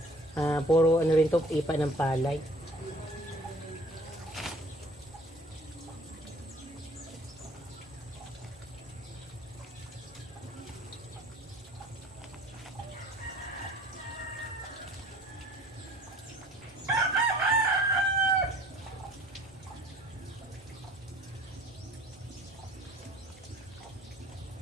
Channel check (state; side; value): normal; both; correlation 0.51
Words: puro rin to, ipa ng palay.